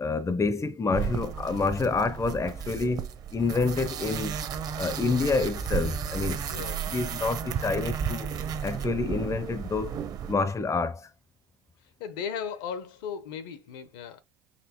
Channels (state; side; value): normal; both; correlation 0.60